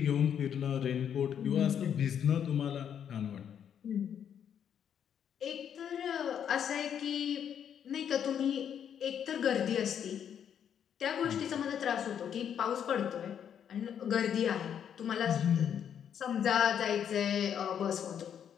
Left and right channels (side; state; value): right; quieter; 8.7 dB